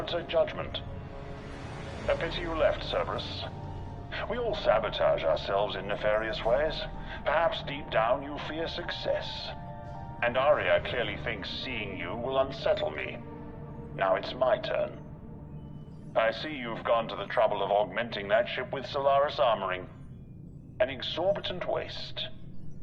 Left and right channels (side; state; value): both; identical; correlation 1.00